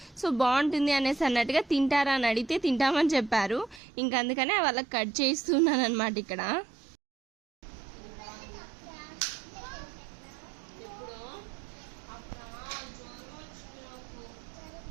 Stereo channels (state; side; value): drops out; left; at 3.8 s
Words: సో బాగుంటుంది అనేసి అన్నట్టుగా తింటారా అని అడిగితే తింటామని చెప్పారు. ఇంకా అందుకనే వాళ్ళకి కట్ చేస్తున్నాను అనమాట ఇక్కడ.